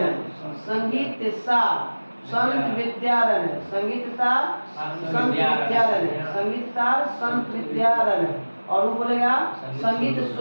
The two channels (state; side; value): inverted; both; correlation -1.00